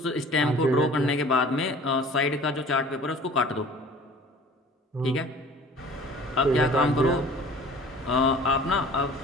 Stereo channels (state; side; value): normal; both; correlation 0.47